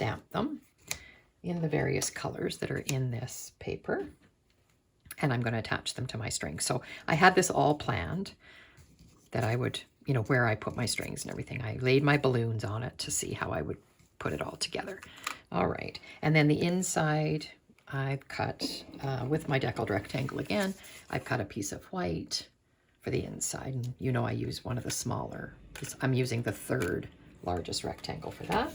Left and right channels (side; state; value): both; identical; correlation 1.00